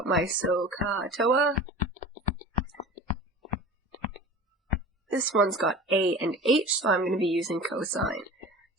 my SOHCAHTOA, this one's got A and H, so I'm going to be using cosine.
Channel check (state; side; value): normal; both; correlation 0.37